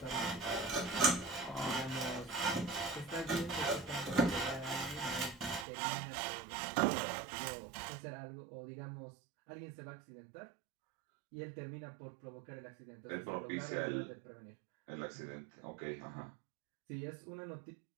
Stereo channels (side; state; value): left; drops out; at 5.7 s